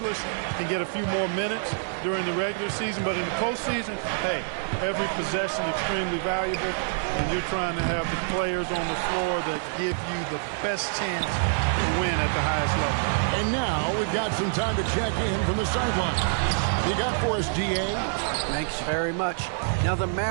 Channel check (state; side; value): silent; left; digital silence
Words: can get a few more minutes during the regular season, but in the postseason, hey, every possession extremely valuable, and you're trying to have the players on the floor that give you the best chance to win at the highest level. And now we've got some time to check in from the sideline. You got for us, DA? Thanks very much. Now, the